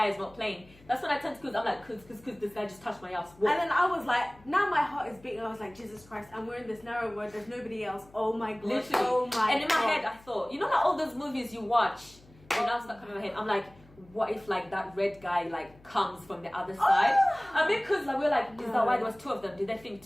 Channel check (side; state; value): left; noise; hum, 26 dB below the sound